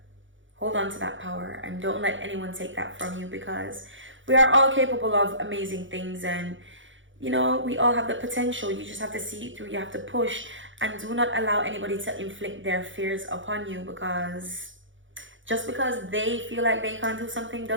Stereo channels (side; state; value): left; late; 0.56 ms